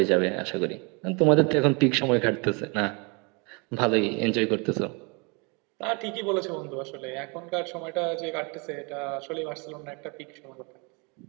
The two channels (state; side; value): quieter; left; 31.4 dB